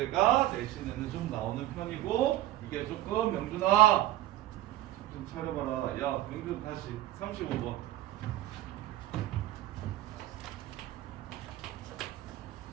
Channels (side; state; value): left; quieter; 14.9 dB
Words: 내신에는 좀 나오는 편이고 이게 조금 명준아 좀 차려봐라. 야, 명준 다시 35번.